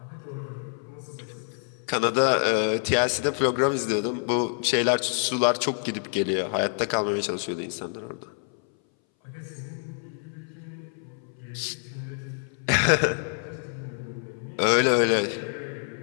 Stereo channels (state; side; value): silent; right; 59 dB below the other